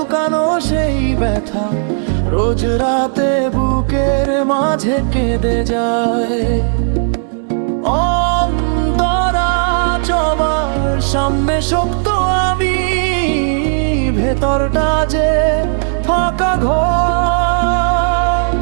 সেই ব্যথা রোজ রাতে বুকের মাঝে কেঁদে যায়। অন্তরা সবার সামনে শক্ত আমি, ভেতরটা যে ফাঁকা ঘর।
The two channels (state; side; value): silent; left; digital silence